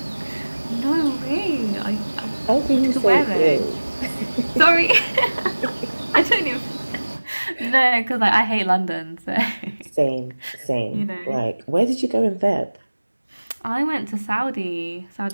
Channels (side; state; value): both; inverted; correlation -1.00